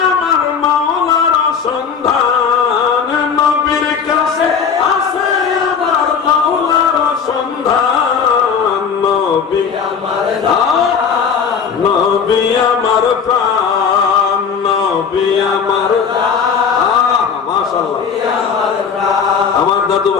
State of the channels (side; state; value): right; quieter; 6.5 dB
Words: আমার মাওলার সন্ধান, নবীর কাছে আছে আমার মাওলার সন্ধান, নবী আমার জান, নবী আমার প্রাণ, নবী আমার মাশাআল্লাহ। আমার দাদু